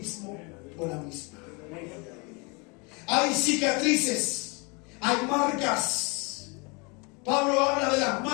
o la misma. Hay cicatrices, hay marcas. Pablo habla de las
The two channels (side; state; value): right; quieter; 30.0 dB